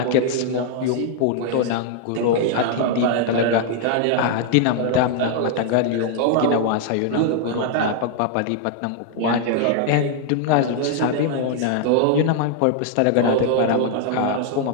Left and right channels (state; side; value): different; both; correlation 0.00